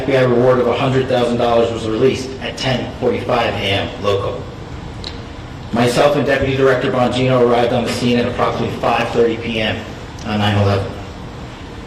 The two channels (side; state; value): both; identical; correlation 1.00